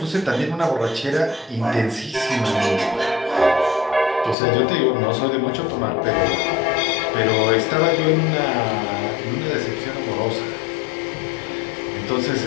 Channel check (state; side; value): drops out; right; at 4.4 s